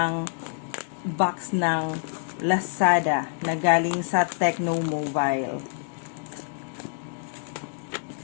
box ng Lazada na galing sa Tecno Mobile.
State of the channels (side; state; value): right; silent; digital silence